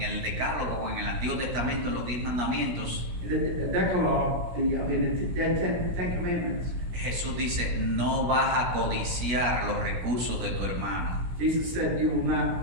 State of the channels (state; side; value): late; left; 16 ms